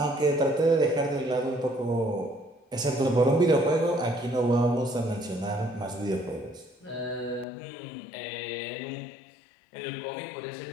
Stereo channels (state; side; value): drops out; right; at 7.5 s